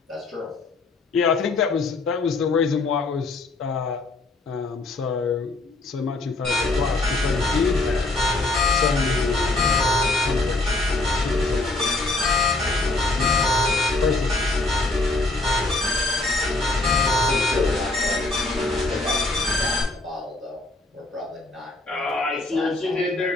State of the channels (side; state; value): right; quieter; 3.1 dB